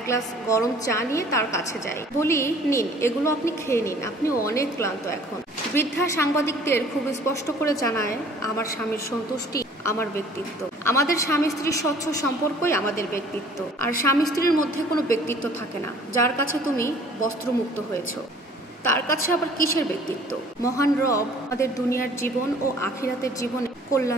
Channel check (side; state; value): both; normal; correlation 0.53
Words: গ্লাস গরম চা নিয়ে তার কাছে যাই, বলি, নিন, এগুলো আপনি খেয়ে নিন, আপনি অনেক ক্লান্ত এখন। বৃদ্ধা সাংবাদিকদের খুব স্পষ্ট করে জানায়, আমার স্বামীর সন্তুষ্টি আমার ব্যক্তিত্ব, আমাদের স্বামী স্ত্রীর স্বচ্ছ সম্পর্কই আমাদের ব্যক্তিত্ব। আর স্বামী স্ত্রীর মধ্যে কোনো ব্যক্তিত্ব থাকে না। যার কাছে তুমি বস্ত্রমুক্ত হয়েছ, তার কাছে আবার কিসের ব্যক্তিত্ব? মহান রব আমাদের দুনিয়ার জীবন ও আখিরাতের জীবনে